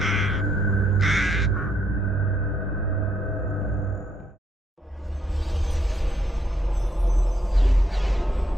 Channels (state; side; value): normal; both; correlation 0.74